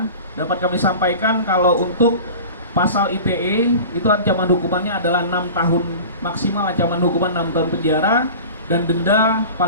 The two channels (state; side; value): inverted; both; correlation -0.37